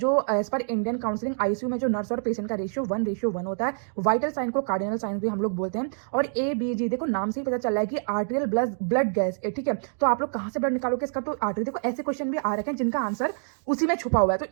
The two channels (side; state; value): left; silent; digital silence